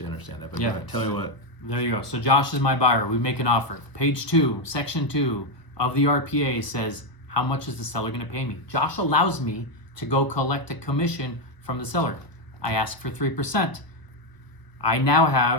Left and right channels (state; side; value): late; right; 1.0 ms